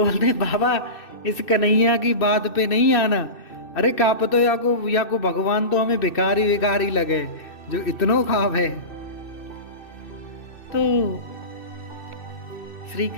बोलते बाबा इस कन्हैया की बात पे नहीं आना, अरे काप तो या को भगवान तो हमें भिखारी लगे जो इतनो खाव है। तो श्री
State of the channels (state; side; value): late; right; 2.6 ms